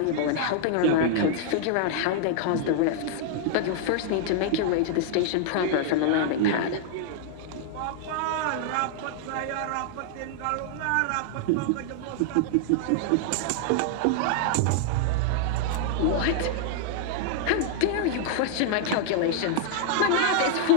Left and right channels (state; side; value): different; both; correlation -0.01